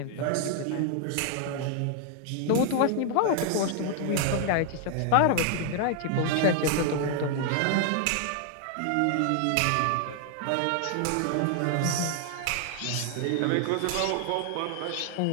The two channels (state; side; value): different; both; correlation 0.00